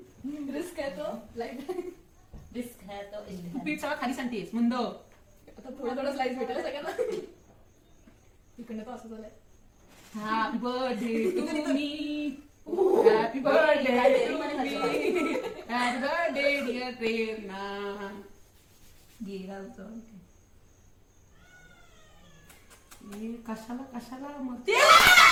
रिस्क आहे तो लाईफ. रिस्क है तो इश्क है. पीठ सगळं खाली सांगतेस मंद. आता थोडं थोडं स्लाइस भेटेल सगळ्यांना. इकडनं तर असं झालंय. Happy birthday to me. Happy birthday to me. Happy birthday dear Prerna. गेला होता. हे कशाला कशाला मग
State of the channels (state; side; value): identical; both; correlation 1.00